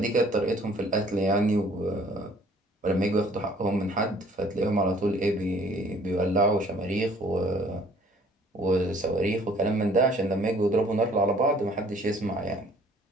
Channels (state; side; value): normal; both; correlation 0.56